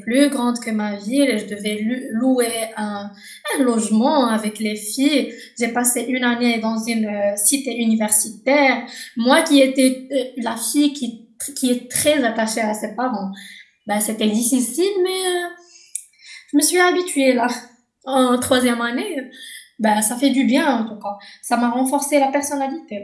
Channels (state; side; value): identical; both; correlation 1.00